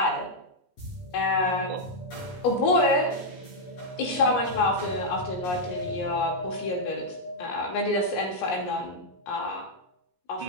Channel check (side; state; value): right; late; 17 ms